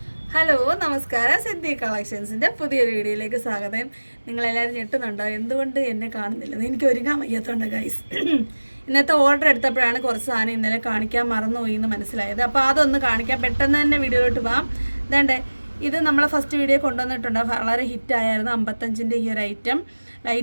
Hello, നമസ്കാരം. സിദ്ധി കളക്ഷൻസിൻ്റെ പുതിയൊരു വീഡിയോയിലേക്ക് സ്വാഗതം. നിങ്ങളെല്ലാവരും ഞെട്ടുന്നുണ്ടോ എന്തുകൊണ്ട് എന്നെ കാണുന്നില്ലെന്ന്? എനിക്ക് ഒരുങ്ങാൻ വയ്യാത്തതുകൊണ്ട് ഗൈസ്. ഇന്നത്തെ ഓർഡർ എടുത്തപ്പോഴാണ് കുറച്ച് സാധനം ഇന്നലെ കാണിക്കാൻ മറന്നുപോയി എന്ന് മനസ്സിലായത്. അപ്പോൾ അതൊന്ന് കാണിക്കാം, പെട്ടെന്ന് തന്നെ വീഡിയോയിലോട്ട് പോകാം. ഇതേണ്ടേ, ഇത് നമ്മളെ ഫസ്റ്റ് വീഡിയോ കൊണ്ടുവന്നിട്ടുണ്ട്, വളരെ ഹിറ്റായിരുന്നു. 55ൻ്റെ ഈ ഒരു ഐറ്റം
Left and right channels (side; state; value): both; inverted; correlation -1.00